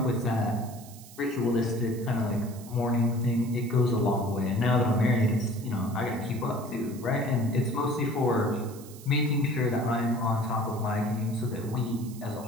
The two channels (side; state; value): right; noise; hiss, 19 dB below the sound